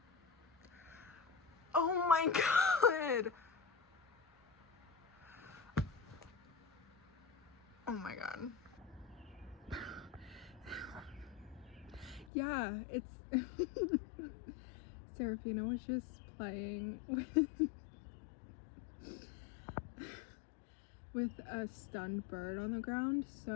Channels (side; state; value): right; drops out; at 12.3 s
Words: Oh my god. Oh my god. Yeah, it's Serafina was just playing with a stunned bird on the ground,